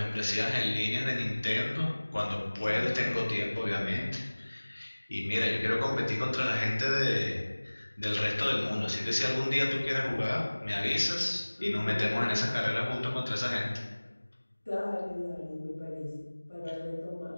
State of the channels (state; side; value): inverted; both; correlation -1.00